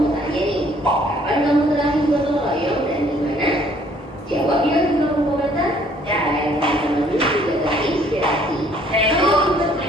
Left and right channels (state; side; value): normal; both; correlation 0.61